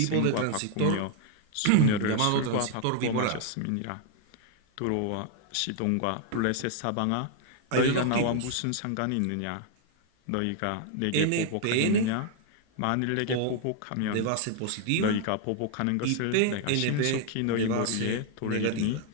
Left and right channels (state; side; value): different; both; correlation 0.00